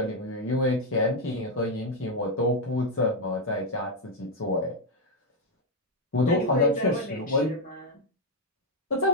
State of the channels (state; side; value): normal; both; correlation 0.03